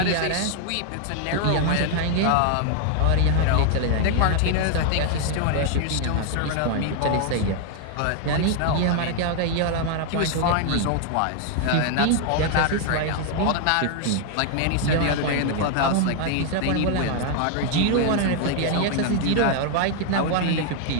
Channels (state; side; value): different; both; correlation 0.00